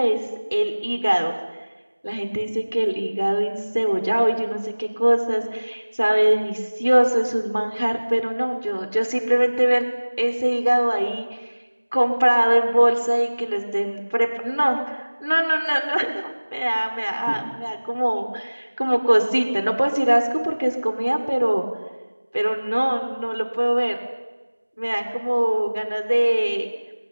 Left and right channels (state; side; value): inverted; both; correlation -1.00